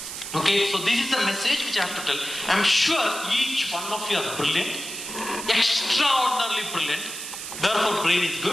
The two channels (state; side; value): noise; right; hiss, 8 dB below the sound